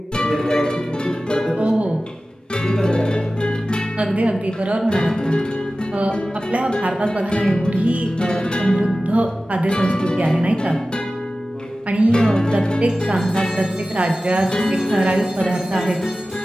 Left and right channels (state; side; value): normal; both; correlation 0.96